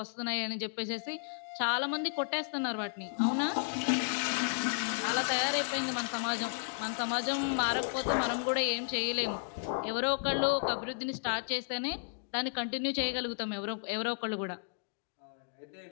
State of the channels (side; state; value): right; silent; digital silence